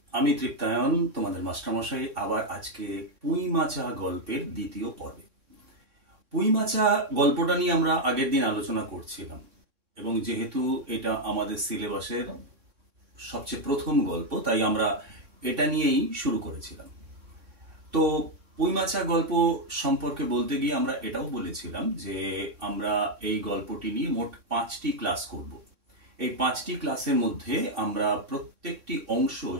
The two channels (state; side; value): late; left; 3.6 ms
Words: আমি তৃপ্তায়ন, তোমাদের মাস্টারমশাই, আবার আজকে পুঁই মাচা গল্পের দ্বিতীয় পর্বে। পুঁই মাচা গল্পটা নিয়ে আমরা আগের দিন আলোচনা করছিলাম, এবং যেহেতু এটা আমাদের সিলেবাসের সবচেয়ে প্রথম গল্প, তাই আমরা এটা নিয়েই শুরু করেছিলাম। তো পুঁই মাচা গল্প সম্পর্কে বলতে গিয়ে আমরা এটাও বলেছিলাম যে আমরা এই গল্পটি নিয়ে মোট 5টি ক্লাস করব। এই 5টি ক্লাসের মধ্যে আমরা প্রত্যেকটি অংশ